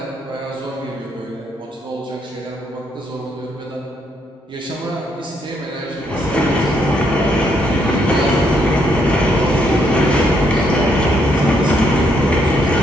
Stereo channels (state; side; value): normal; both; correlation 0.73